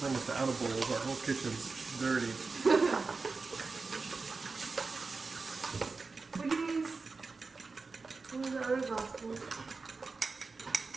we're almost out of bowls. Our whole kitchen's dirty. We can use one of the other glass bowls.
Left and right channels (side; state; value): left; quieter; 4.2 dB